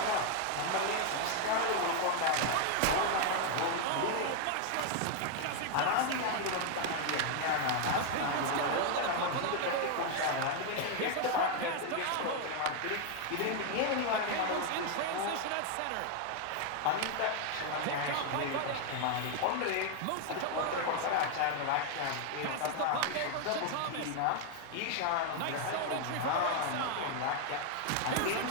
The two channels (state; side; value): different; both; correlation 0.00